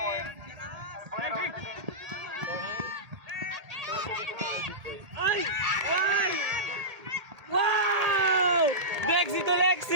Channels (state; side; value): late; left; 1.8 ms